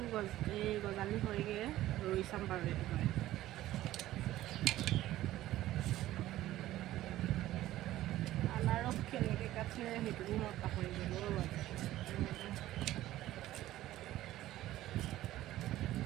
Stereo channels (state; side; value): quieter; left; 14.9 dB